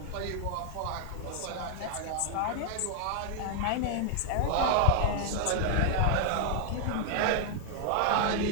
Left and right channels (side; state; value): both; different; correlation 0.00